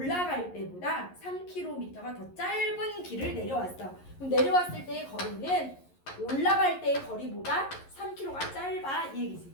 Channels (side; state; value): right; late; 11 ms